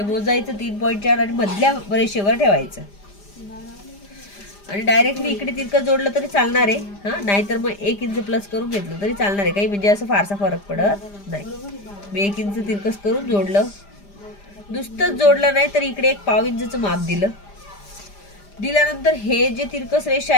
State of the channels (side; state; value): right; late; 5.0 ms